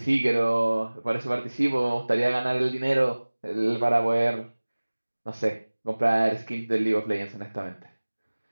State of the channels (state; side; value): inverted; both; correlation -1.00